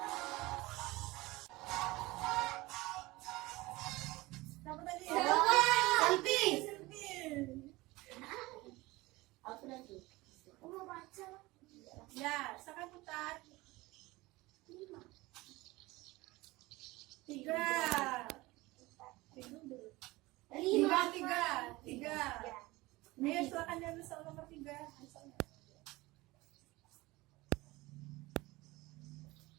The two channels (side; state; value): left; quieter; 20.7 dB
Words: Siapa tadi? Selfie. Selfie. Aku nanti. Aku mau baca. Ya, silakan putar. 5. 3. Lima. Tiga. Ayo silakan diambil soal nomor 3.